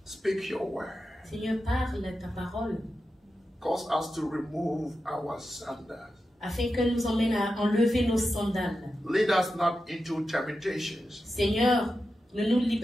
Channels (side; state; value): both; normal; correlation 0.90